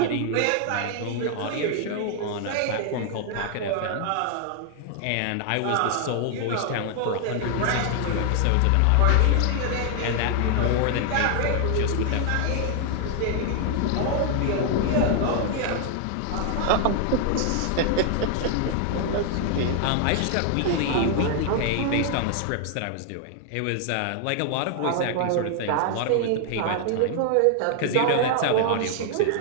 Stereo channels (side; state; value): both; different; correlation 0.00